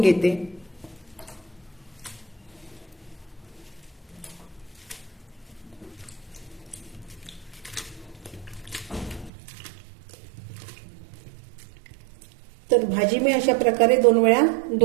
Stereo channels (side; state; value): left; drops out; at 9.3 s